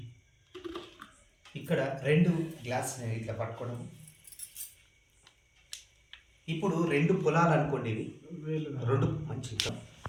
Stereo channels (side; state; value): both; identical; correlation 1.00